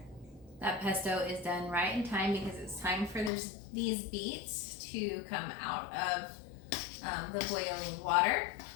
That pesto is done right in time because it's time for these beets to come out of the boiling water.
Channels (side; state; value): right; drops out; at 3.3 s